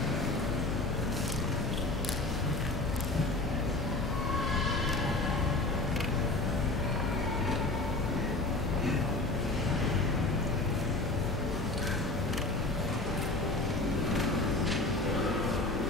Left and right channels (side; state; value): right; quieter; 3.1 dB